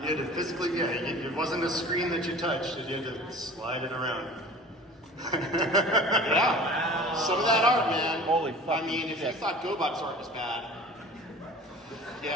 You had to physically, it wasn't a screen that you touched, you had to slide it around. Yeah. Some of that art, man. Holy fuck. I mean, if you thought GoBot's art was bad.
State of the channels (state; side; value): normal; both; correlation 0.42